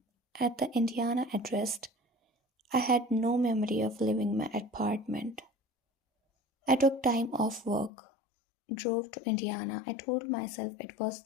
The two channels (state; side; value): drops out; right; at 7.9 s